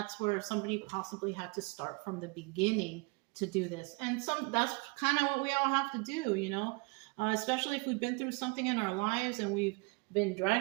where somebody possibly had to start from the beginning to do this. And that's kind of what we all have to do, you know? Especially if we've been through something in our lives and we've been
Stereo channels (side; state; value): left; quieter; 30.1 dB